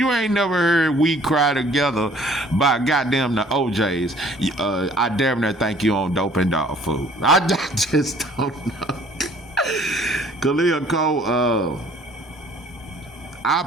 ain't never heard We Cry Together by goddamn the OJs, I damn near think you on dope and dog food. I just don't know. Khalil Cole, I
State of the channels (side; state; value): both; normal; correlation 0.56